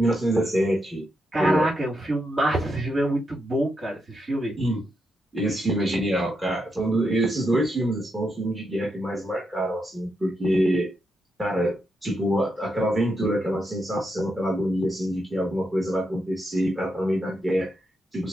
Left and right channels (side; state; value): both; normal; correlation 0.83